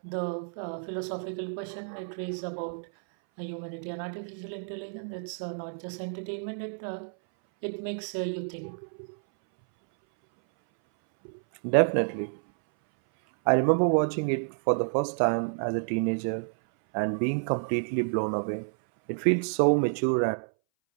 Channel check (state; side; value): silent; left; 58 dB below the other